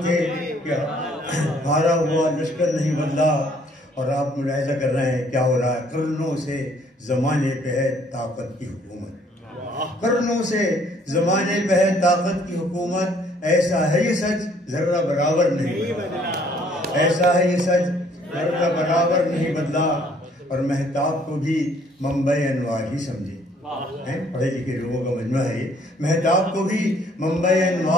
تھے کہ ہارا ہوا لشکر نہیں بدلا. اور آپ ملاحظہ کر رہے ہیں کیا ہو رہا ہے. قرنوں سے زمانے پہ ہے طاقت کی حکومت، قرنوں سے زمانے پہ ہے طاقت کی حکومت. ایسا ہے یہ سچ ذرہ برابر نہیں بدلا، ایسا ہے یہ سچ ذرہ برابر نہیں بدلا. اور مہتاب کو بھی منبع انوار ہی سمجھے، پڑھے لکھے لوگوں کا مجمع ہے یہ. مہتاب کو بھی منبع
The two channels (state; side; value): normal; both; correlation 0.62